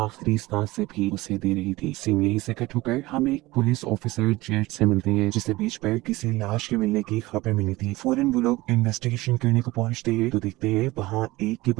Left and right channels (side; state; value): left; quieter; 19.7 dB